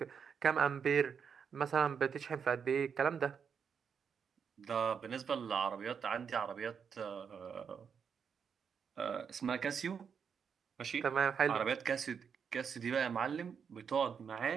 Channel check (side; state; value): left; quieter; 6.8 dB